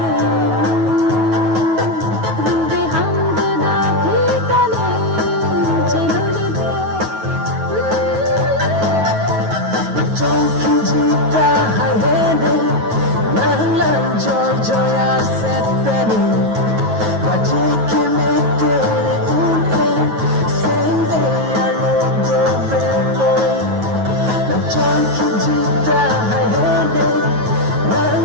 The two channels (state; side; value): late; left; 9.3 ms